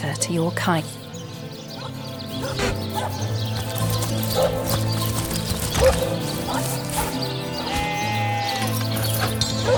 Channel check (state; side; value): identical; both; correlation 1.00